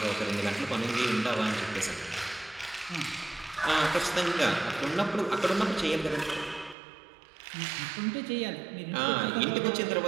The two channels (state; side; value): drops out; left; at 6.8 s